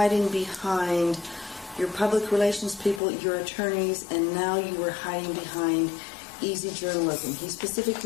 behind your public relations people, your attorneys, and now you were hiding behind easy journalism. He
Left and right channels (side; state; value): right; drops out; at 3.0 s